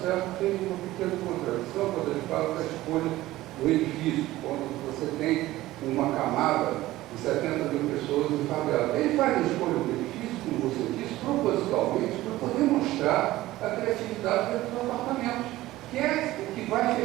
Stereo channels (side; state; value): left; quieter; 16.6 dB